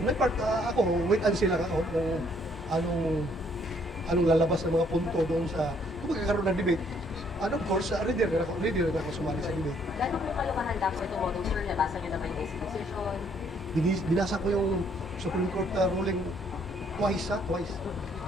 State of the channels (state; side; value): normal; both; correlation 0.66